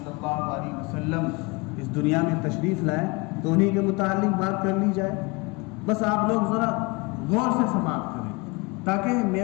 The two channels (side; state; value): right; quieter; 27.0 dB